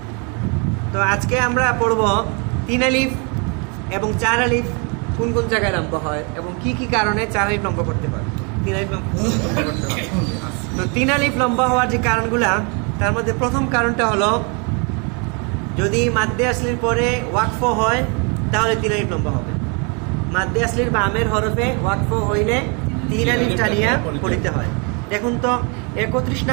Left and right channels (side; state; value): left; quieter; 34.0 dB